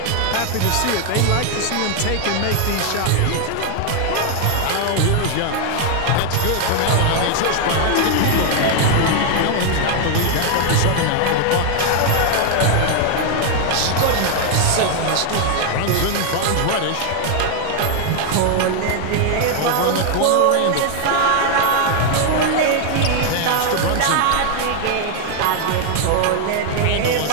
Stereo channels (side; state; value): both; different; correlation 0.00